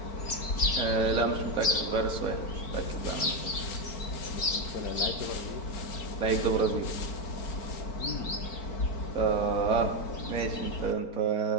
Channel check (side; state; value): right; late; 4.5 ms